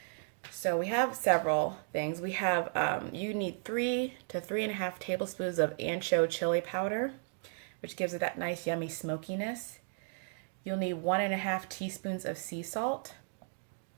So we have several things. We have, you need 3 to 3.5 tablespoons of ancho chili powder, which gives it that nice yummy smokiness. You'll need 1.5 teaspoons of sea salt.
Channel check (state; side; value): silent; left; digital silence